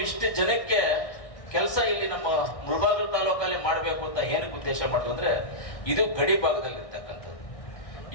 ಇಷ್ಟು ಜನಕ್ಕೆ ಕೆಲಸ ಇಲ್ಲಿ ನಮ್ಮ ಮುಳಬಾಗಿಲು ತಾಲೂಕಲ್ಲಿ ಮಾಡಬೇಕು ಅಂತ ಏನಕ್ಕೆ ಉದ್ದೇಶ ಮಾಡಿದ್ರು ಅಂದ್ರೆ, ಇದು ಗಡಿ ಭಾಗದಲ್ಲಿ ಇರ್ತಕ್ಕಂಥದ್ದು.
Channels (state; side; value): late; right; 1.6 ms